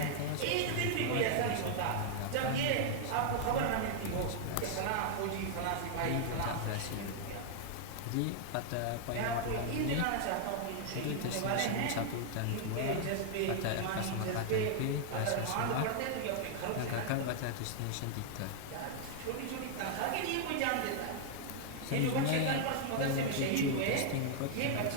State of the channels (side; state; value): both; different; correlation 0.00